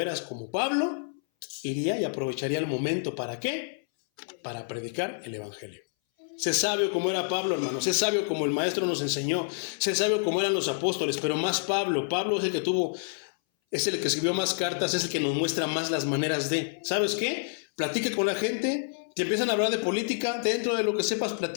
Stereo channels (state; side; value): silent; right; 59 dB below the other